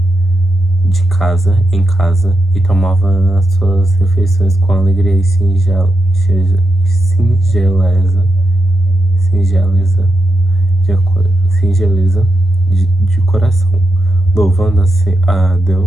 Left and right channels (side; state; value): both; normal; correlation 0.86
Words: em casa, e tomavam as suas refeições com alegria e singeleza de coração, louvando a